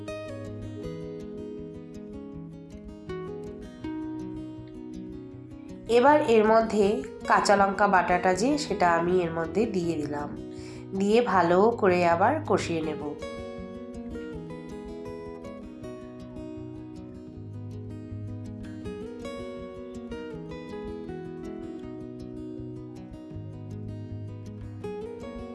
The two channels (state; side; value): identical; both; correlation 1.00